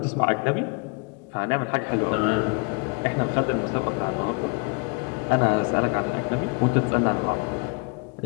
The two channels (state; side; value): quieter; right; 32.1 dB